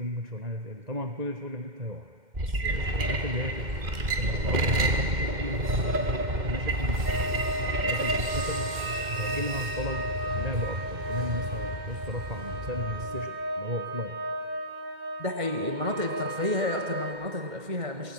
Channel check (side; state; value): left; late; 2.1 ms